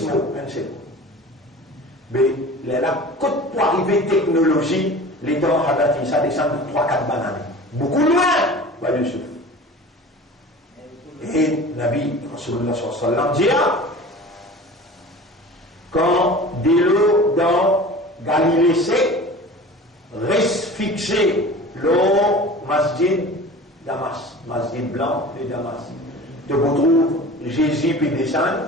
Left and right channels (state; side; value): normal; both; correlation 0.39